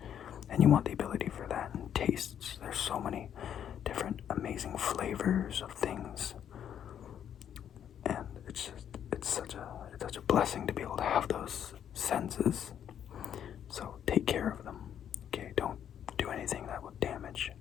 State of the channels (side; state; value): right; quieter; 9.4 dB